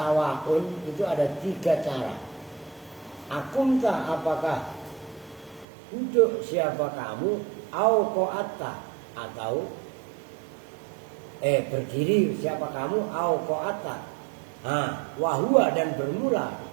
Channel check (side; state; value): left; drops out; at 5.7 s